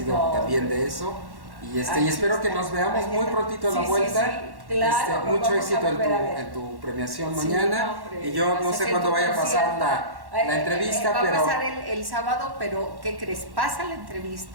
No. también de eso, y Aquí espero que está. nos veamos Aquí muy está. prontito a la Sí, vuelta. sí, claro, nos Mucho vamos a éxito volver a ver. en tu premiación Sí, mañana, no, hombre, y yo no pues, sé es cuándo tu vaya a pasar concierto. la entrevista, va pero... a pasar el sábado, pero ¿qué crees? Pasa la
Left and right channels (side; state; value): left; late; 1.1 ms